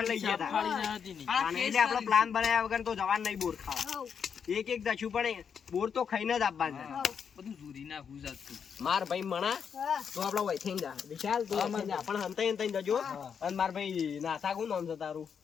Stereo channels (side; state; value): right; quieter; 7.0 dB